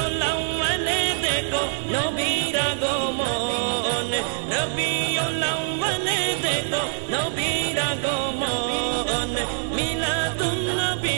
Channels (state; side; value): silent; left; 56 dB below the other